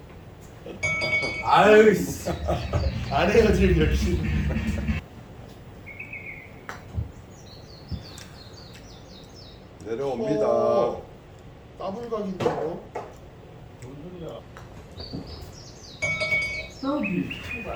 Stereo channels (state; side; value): identical; both; correlation 1.00